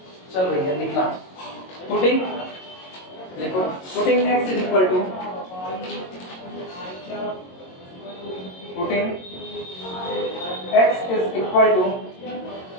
चल भैया लिखना, putting देखो, putting x is equal to, putting x is equal to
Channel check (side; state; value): right; late; 22 ms